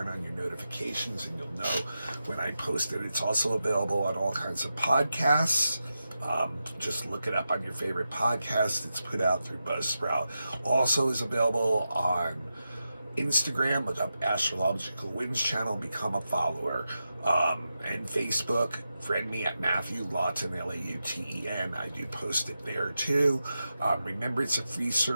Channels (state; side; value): inverted; both; correlation -0.90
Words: on your notifications, and you'll know when I post it. It's also available on all kinds of podcasts. Just look it up on your favorite podcast. It's put out through Buzzsprout. Also is available on Instagram. Look up Astrological Winds channel, become a follower. And Facebook, friend me at Matthew Lawton, Lauten. I do post it there too. Remember, it's a free